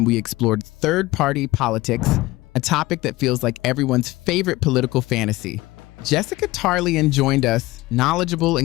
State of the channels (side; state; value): right; quieter; 19.4 dB